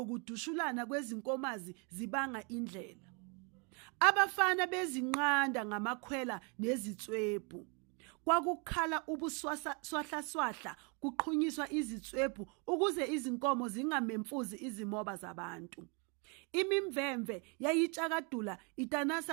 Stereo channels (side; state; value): left; quieter; 34.3 dB